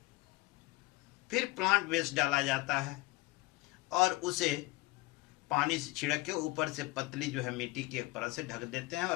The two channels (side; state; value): right; quieter; 21.4 dB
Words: फिर प्लांट वेस्ट डाला जाता है, और उसे पानी से छिड़क के ऊपर से पतली जो है मिट्टी की एक परत से ढक देते हैं,